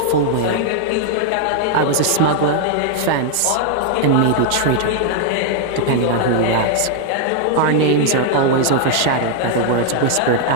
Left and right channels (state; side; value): different; both; correlation 0.00